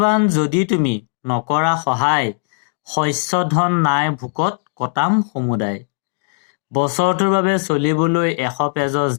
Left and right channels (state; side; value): silent; right; 67 dB below the other